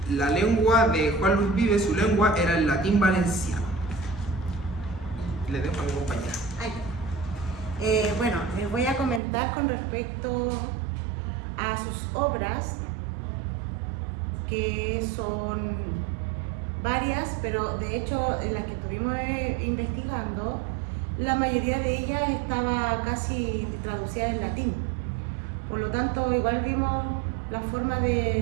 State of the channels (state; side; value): drops out; left; at 9.2 s